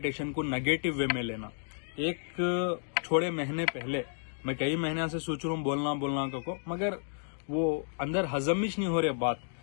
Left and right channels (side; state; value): right; silent; digital silence